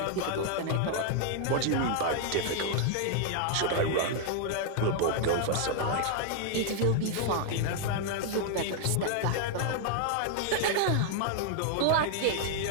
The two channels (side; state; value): both; different; correlation 0.00